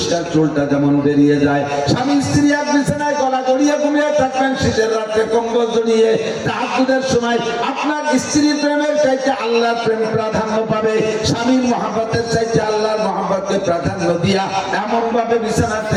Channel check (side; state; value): both; identical; correlation 1.00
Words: চুলটা যেমন বেরিয়ে যায়। স্বামী স্ত্রী এক বিছানায় গলা জড়িয়ে ঘুমিয়ে থাকবেন, শীতের রাত্রে কম্বল জড়িয়ে। তাহাজ্জুদের সময় আপনার স্ত্রীর প্রেমের চাইতে আল্লাহর প্রেম প্রাধান্য পাবে। স্বামীর মহব্বতের চাইতে আল্লাহর মহব্বতকে প্রাধান্য দিয়া এমন ভাবে বিছানা